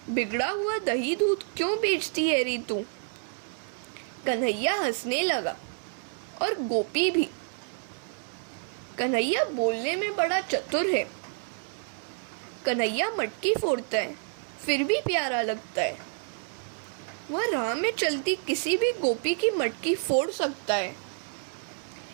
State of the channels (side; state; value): left; silent; 56 dB below the other